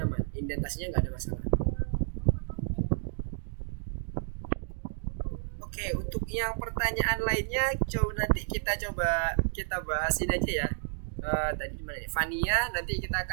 aman, indentasinya nggak ada masalah. Oke, untuk yang pertanyaan lainnya nanti kita bahasin aja ya. Tadi gimana nih? Fania, nanti kita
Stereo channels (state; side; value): silent; left; digital silence